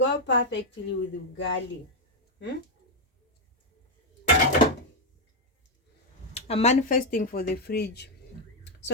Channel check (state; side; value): normal; both; correlation 0.02